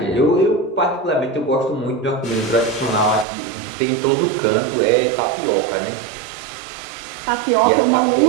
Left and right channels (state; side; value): drops out; left; at 3.2 s